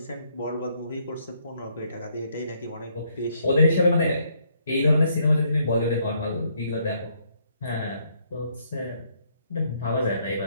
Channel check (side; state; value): both; inverted; correlation -0.70